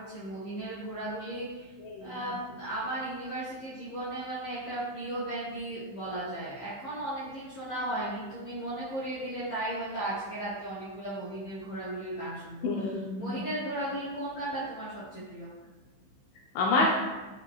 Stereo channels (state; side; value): late; right; 15 ms